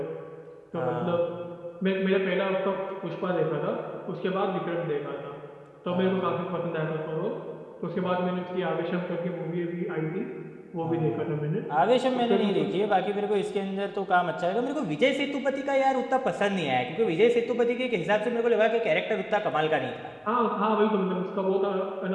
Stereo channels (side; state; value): both; identical; correlation 1.00